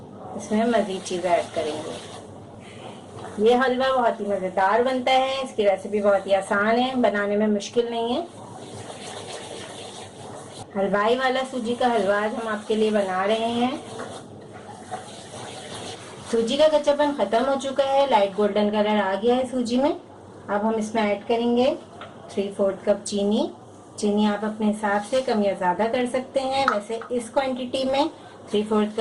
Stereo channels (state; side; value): identical; both; correlation 1.00